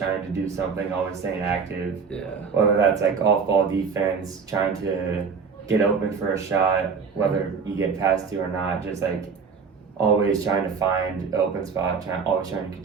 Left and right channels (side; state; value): left; quieter; 5.6 dB